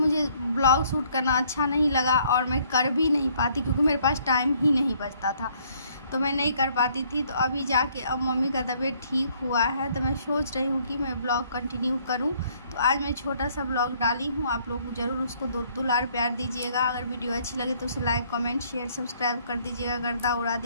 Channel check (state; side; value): inverted; both; correlation -0.64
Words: ब्लॉग शूट करना अच्छा नहीं लगा और मैं कर भी नहीं पाती, क्योंकि मेरे पास टाइम ही नहीं बचता था, तो मैं नहीं कर पाती थी। तो अभी जाके अब मम्मी का तबीयत ठीक हुआ है, तो मैं सोच रही हूँ कि मैं ब्लॉग कंटिन्यू करूँ। तो आज मैं छोटा सा ब्लॉग डाली हूँ। आप लोग ज़रूर उसको दुलार प्यार दीजिएगा। अगर वीडियो अच्छी लगे तो उसे लाइक, कमेंट, शेयर, सब्सक्राइब कर दीजिएगा, गर्दा उड़ा